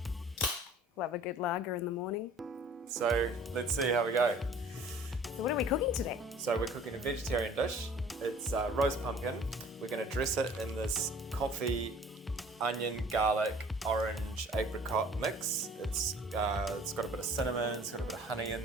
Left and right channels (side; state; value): both; normal; correlation 0.50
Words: Love a good lager in the morning. So let's see how we go. So what are we cooking today? So we're cooking a vegetarian dish. It's roast pumpkin. We're going to dress it in this coffee, onion, garlic, orange, apricot mix. It's got a bit of cinnamon, it's got a bit of honey in